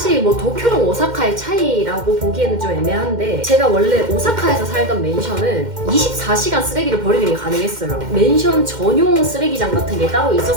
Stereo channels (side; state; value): left; late; 2.1 ms